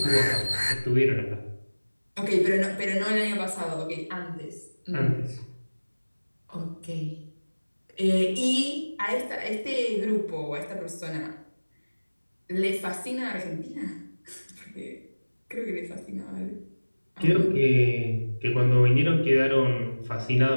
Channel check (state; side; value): inverted; both; correlation -1.00